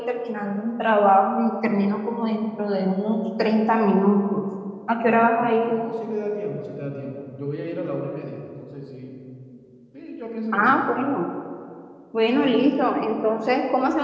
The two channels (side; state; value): both; identical; correlation 1.00